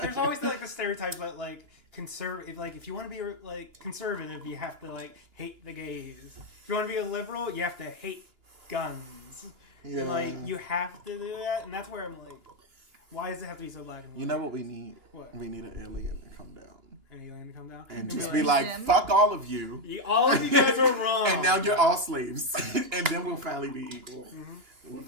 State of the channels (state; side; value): late; left; 2.9 ms